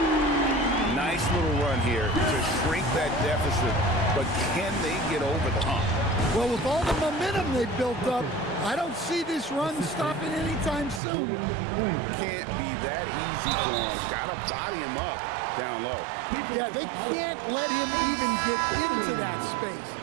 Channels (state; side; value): drops out; left; at 11.0 s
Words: Nice little run here to shrink that deficit, but can they get over the hump? Well, with all the momentum they've built up, I don't see this run stopping anytime soon. Can't be that easy for him. Got to body him up down low. Yeah, they can't let him even get into that space.